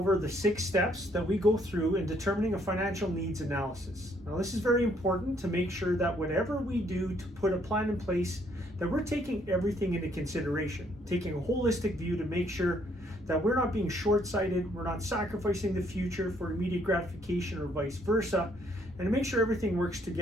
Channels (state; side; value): normal; both; correlation 0.68